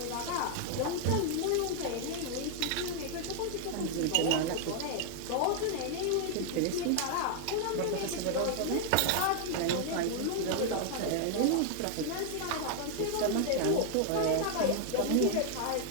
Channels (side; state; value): both; different; correlation 0.00